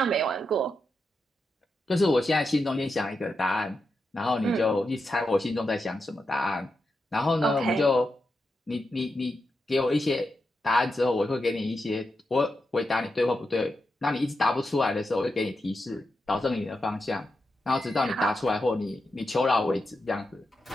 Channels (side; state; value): both; normal; correlation 0.87